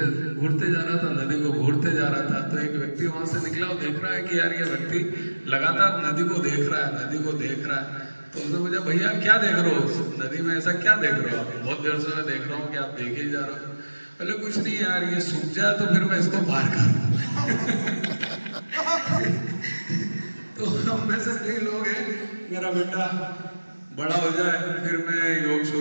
जा रहा था, नदी को घूरते जा रहा था। तो एक व्यक्ति वहां से निकला और देख रहा है कि यार ये व्यक्ति लगातार नदी को देख रहा है, नदी को देख रहा है। तो उसने पूछा, भैया क्या देख रहे हो नदी में, ऐसा क्या देख रहे हो आप? बहुत देर से मैं देख रहा हूँ कि आप देखे ही जा रहे हो। बोले कुछ नहीं यार, ये सूख जाए तो फिर मैं इसको पार करूँ। तो हम में से कई लोग हैं, मेरा बेटा बड़ा हो जाए फिर मैं योग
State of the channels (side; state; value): both; inverted; correlation -1.00